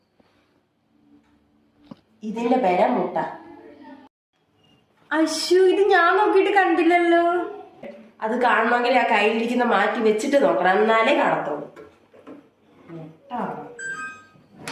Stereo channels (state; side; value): identical; both; correlation 1.00